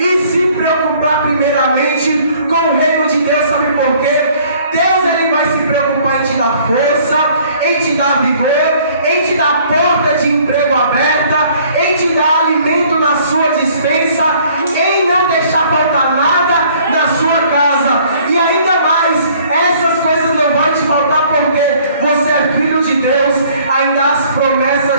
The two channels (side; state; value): both; inverted; correlation -0.57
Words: se preocupar primeiramente com o reino de Deus. Sabe por quê? Deus, ele vai se preocupar em te dar força, em te dar vigor, em te dar porta de emprego aberta, em te dar alimento na sua despensa, em não deixar faltar nada na sua casa. E ainda mais, essas coisas não vão te faltar porque você é filho de Deus. Ainda as